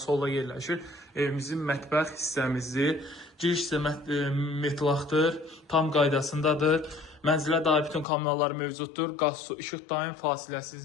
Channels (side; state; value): right; drops out; at 8.1 s